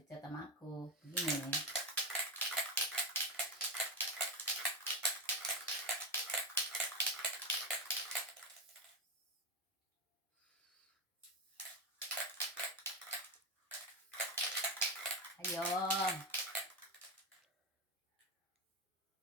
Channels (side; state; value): both; normal; correlation 0.11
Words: sama aku? Begini. Ayo.